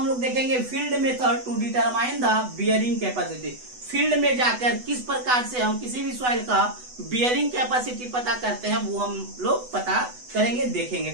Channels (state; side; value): late; left; 8.1 ms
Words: लोग देखेंगे field method to determine the bearing capacity. Field में जाकर किस प्रकार से हम किसी भी सॉइल का बियरिंग कैपेसिटी पता करते हैं, वो हम लोग पता करेंगे, देखेंगे,